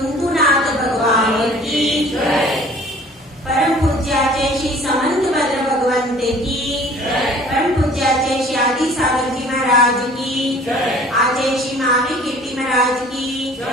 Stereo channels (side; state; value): both; normal; correlation 0.50